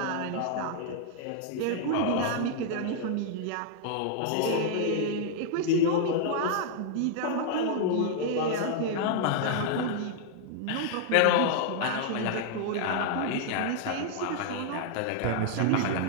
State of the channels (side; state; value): both; different; correlation -0.01